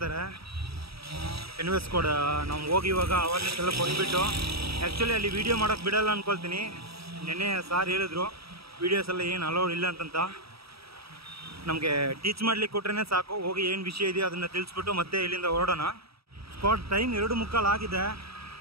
ಎನ್ವೆಸ್ ಕೂಡ ನಾವು ಹೋಗಿ ಇವಾಗ ಅವೇರ್ನೆಸ್ ಎಲ್ಲ ಕೊಟ್ಬಿಟ್ಟು, ಆ್ಯಕ್ಚುಲಿ ಅಲ್ಲಿ ವೀಡಿಯೋ ಮಾಡೋಕ್ಕೆ ಬಿಡೋಲ್ಲ ಅಂದ್ಕೊಳ್ತೀನಿ. ನೆನ್ನೆ ಸಾರ್ ಹೇಳಿದ್ರು ವೀಡಿಯೋಸ್ ಎಲ್ಲ ಏನು ಅಲೌಡ್ ಇಲ್ಲ ಅಂತಂತ. ನಮಗೆ ಟೀಚ್ ಮಾಡ್ಲಿಕ್ಕೆ ಕೊಟ್ರೇ ಸಾಕು, ಹೋಗಿ ಏನು ವಿಷಯ ಇದೆಯೋ ಅದನ್ನು ತಿಳಿಸ್ಬಿಟ್ಟು ಮತ್ತೆ ಇಲ್ಲಿಂದ ಹೊರಡೋಣ. ಸ್ಪಾಟ್ ಟೈಮ್ 2:45 ಆಗಿದೆ.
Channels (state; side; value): late; left; 0.77 ms